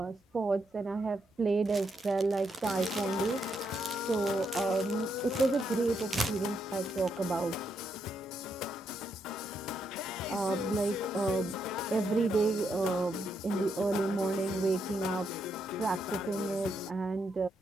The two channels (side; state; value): both; normal; correlation 0.79